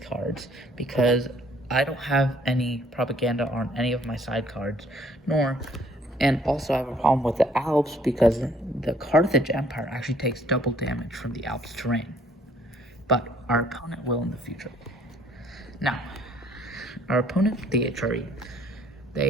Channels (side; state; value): both; normal; correlation 0.61